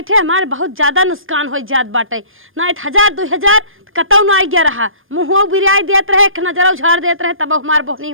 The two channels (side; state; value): left; late; 0.59 ms